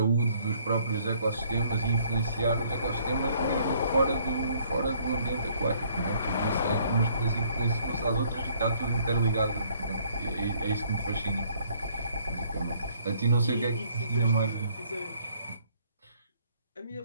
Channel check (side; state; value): both; inverted; correlation -0.63